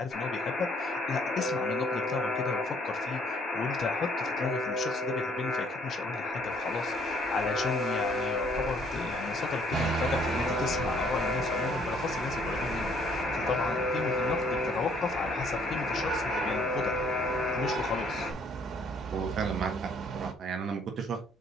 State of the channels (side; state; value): both; normal; correlation 0.62